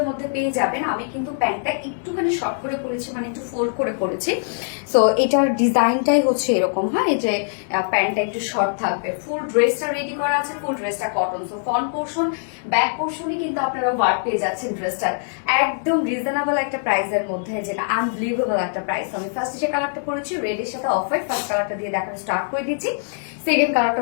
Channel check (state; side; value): silent; right; 64 dB below the other